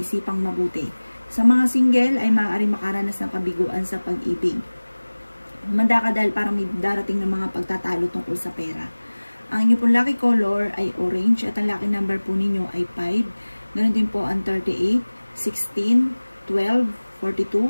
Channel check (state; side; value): inverted; both; correlation -1.00